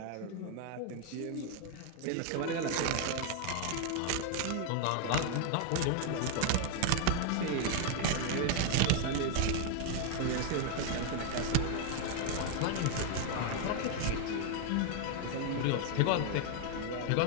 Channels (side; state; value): both; different; correlation 0.00